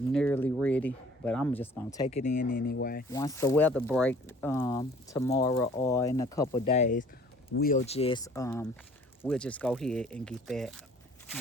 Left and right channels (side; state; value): both; normal; correlation 0.52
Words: ready, but I'm just gonna take it in anyway. Once the weather break tomorrow or in a couple days, we'll just go ahead and get that,